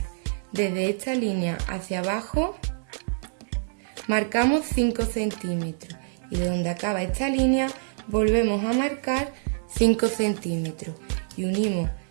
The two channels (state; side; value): silent; left; digital silence